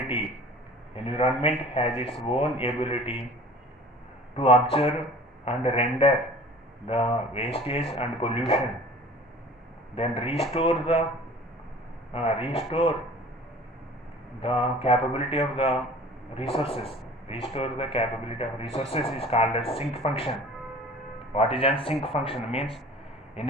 To observe and render the wastage and pollution, then restore the capability of the resources. Is called as sink function. What is a sink function? Means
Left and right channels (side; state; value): both; normal; correlation 0.45